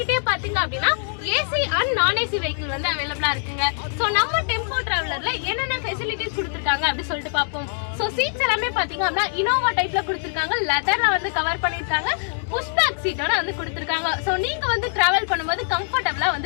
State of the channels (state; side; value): silent; right; digital silence